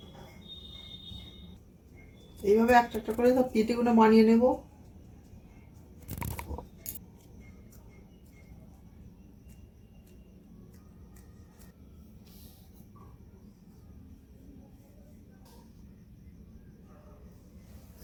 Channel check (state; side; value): identical; both; correlation 1.00